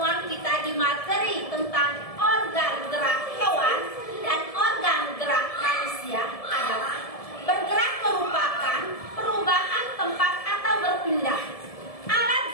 kita di materi tentang organ gerak hewan dan organ gerak manusia adalah bergerak merupakan perubahan tempat atau berpindah. Alat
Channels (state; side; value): late; right; 1.7 ms